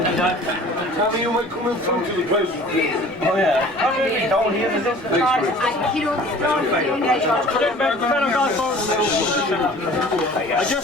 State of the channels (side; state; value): both; normal; correlation 0.47